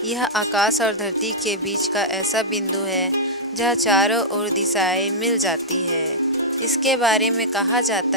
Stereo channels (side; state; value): both; normal; correlation -0.10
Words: यह आकाश और धरती के बीच का ऐसा बिंदु है जहाँ चारों ओर दिशाएं मिल जाती है। इसके बारे में कहा